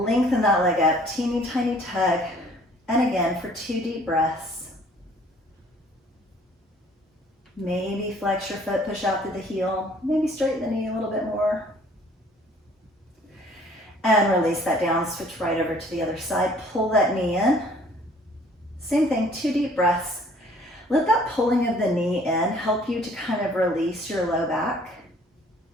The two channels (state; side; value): normal; both; correlation 0.56